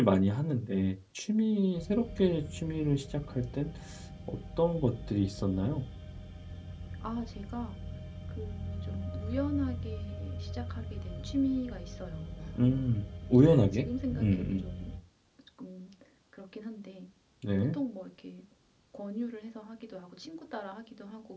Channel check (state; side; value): identical; both; correlation 1.00